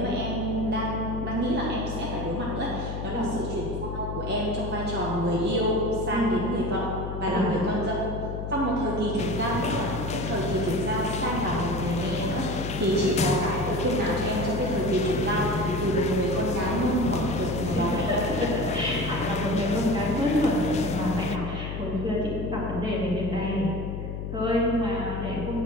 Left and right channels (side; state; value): left; noise; hum, 5 dB below the sound